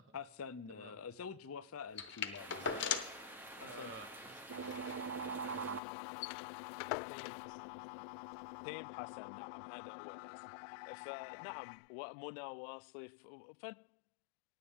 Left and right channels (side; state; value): right; drops out; at 5.8 s